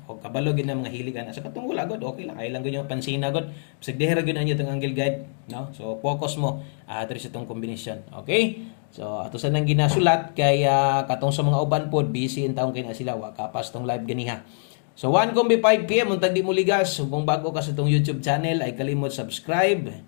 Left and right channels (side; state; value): right; silent; digital silence